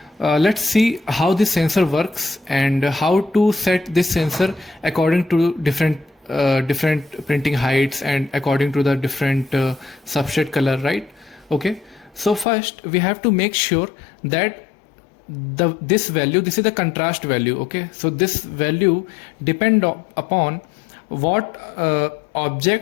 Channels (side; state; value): right; drops out; at 12.5 s